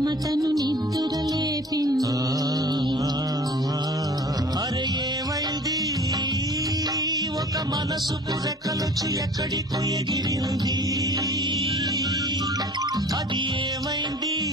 నిద్రలేపింది. అరే ఏమైంది, ఒక మనసు పురకలొచ్చి ఎక్కడికో ఎగిరింది. అది ఏమైంది,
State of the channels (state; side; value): normal; both; correlation 0.47